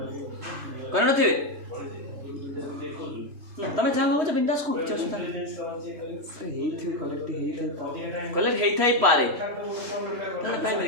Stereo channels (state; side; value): late; left; 3.1 ms